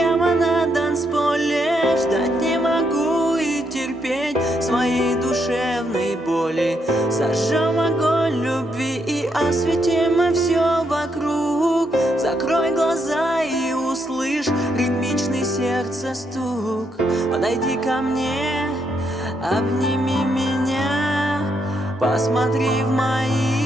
на танцполе. Ждать не могу и терпеть своей душевной боли. Зажжем огонь любви и осветим все вокруг. Закрой глаза и услышь ритмичный сердца стук. Подойди ко мне, обними меня, посмотри в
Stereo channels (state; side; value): normal; both; correlation 0.77